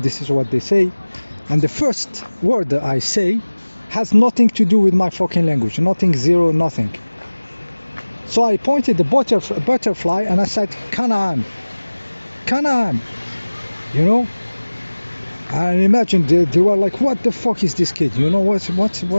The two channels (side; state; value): both; inverted; correlation -1.00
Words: is what they say, and the first word that I say has nothing to do with my fucking language. Nothing, zero, nothing. So I pointed the butterfly and I said, Canaan. You know. And imagine they were like, what the fuck is this kid? You know, what's